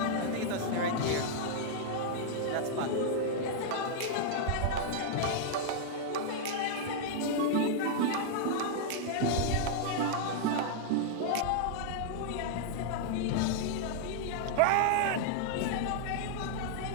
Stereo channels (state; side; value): different; both; correlation -0.01